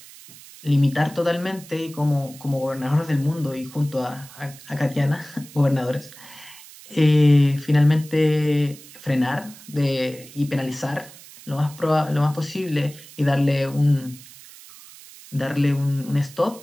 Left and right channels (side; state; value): right; noise; hiss, 19 dB below the sound